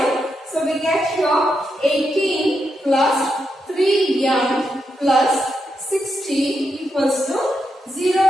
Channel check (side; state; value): both; normal; correlation 0.84